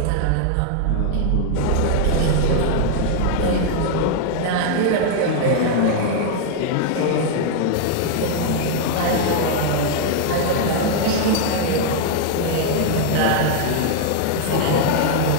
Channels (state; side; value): different; both; correlation 0.00